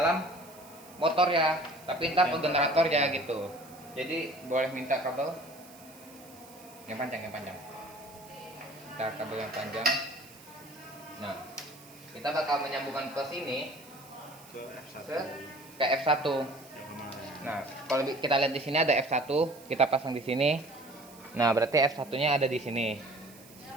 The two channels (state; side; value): noise; right; hiss, 22 dB below the sound